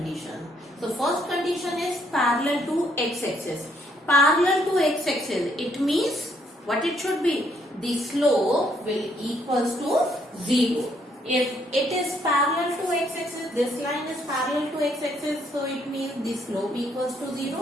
So first condition is parallel to x-axis. Parallel to x-axis, it means what it should be? The slope will equals to 0. If it is parallel to x-axis, this line is parallel to x-axis, so it means the slope equals to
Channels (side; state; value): both; normal; correlation 0.70